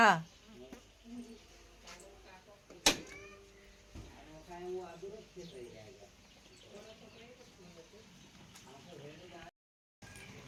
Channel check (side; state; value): both; identical; correlation 1.00